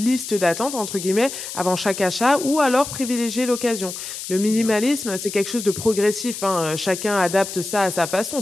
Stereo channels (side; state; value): left; noise; hiss, 8 dB below the sound